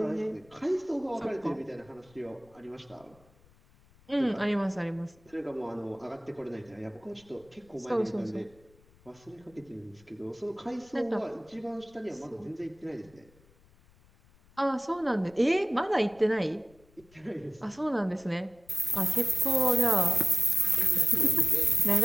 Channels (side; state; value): left; noise; rumble, 29 dB below the sound